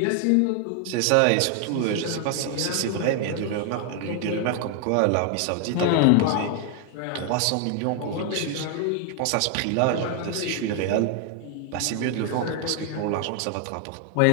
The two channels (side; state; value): both; different; correlation 0.00